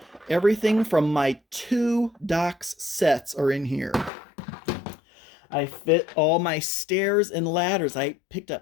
everything from my 2 docks sets are in here. I fit all my stairs and ladders. I picked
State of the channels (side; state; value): right; drops out; at 4.1 s